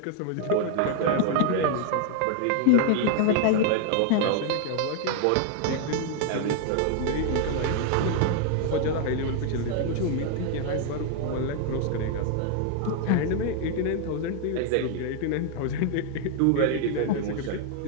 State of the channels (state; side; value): different; both; correlation 0.00